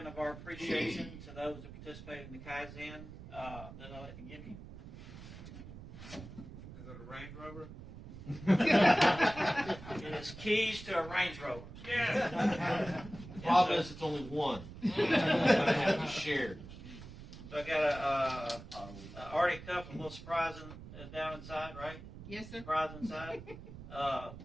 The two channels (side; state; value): right; noise; rumble, 14 dB below the sound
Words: of our appreciation to those that participated in the Kaizen that I'd like to give you. Is it a Range Rover? It is keys to a Range Rover. Yeah. The problem is it's only one. We're going to have to share. So I got a Arctic cup, a little surprise down inside, right? Yes, sir. Surprise inside.